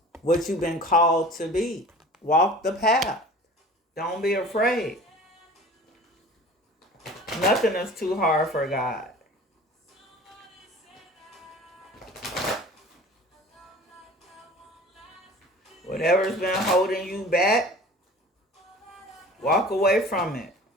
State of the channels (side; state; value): both; normal; correlation 0.43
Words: what you've been called to be. Walk the path. Don't be afraid. Nothing is too hard for God. Whatever's been holding you back, walk away from it.